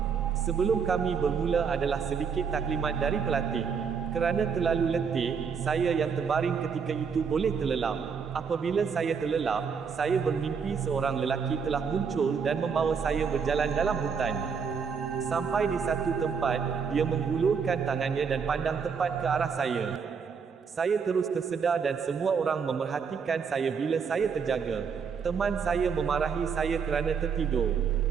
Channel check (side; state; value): left; quieter; 6.2 dB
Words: Sebelum kami bermula adalah sedikit taklimat dari pelatih. Kerana terlalu letih, saya yang terbaring ketika itu boleh terlelap. Apabila saya terlelap, saya bermimpi seorang lelaki telah muncul dan membawa saya berjalan dalam hutan. Sampai di satu tempat, dia menghulurkan tangannya dan pandang tepat ke arah saya. Saya terus tersedar dan semua orang memerhatikan saya bila saya terjaga. Teman saya memarahi saya kerana tertidur.